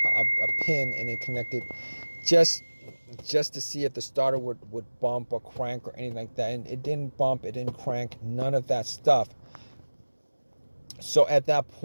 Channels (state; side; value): inverted; both; correlation -1.00